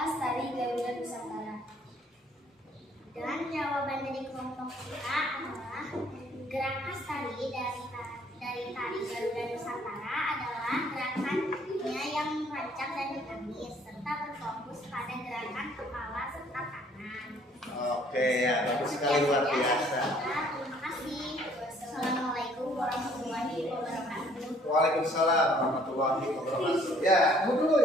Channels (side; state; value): both; normal; correlation 0.60